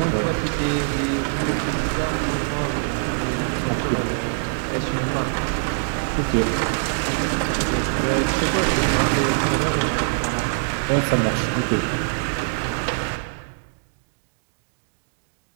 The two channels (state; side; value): silent; left; digital silence